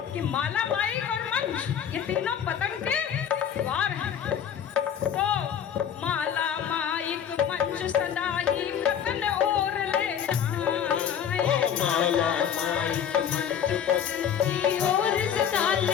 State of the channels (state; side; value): quieter; right; 8.6 dB